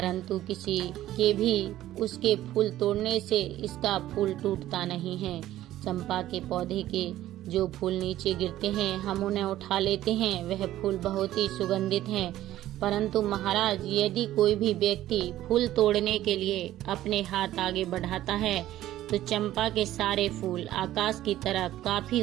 किसी के भी उसके फूल तोड़ने से इसका फूल टूटता नहीं है। चंपा के पौधे के जो फूल नीचे गिरते हैं हम उन्हें उठा लेते हैं। वह फूल बहुत ही सुगंधित हैं, परंतु महाराज यदि कोई भी व्यक्ति फूल तोड़ने के लिए अपने हाथ आगे बढ़ाता है तो चंपा के सारे फूल आकाश की तरफ काफी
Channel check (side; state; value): left; quieter; 13.9 dB